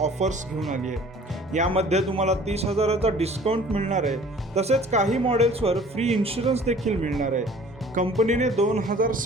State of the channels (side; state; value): both; normal; correlation 0.50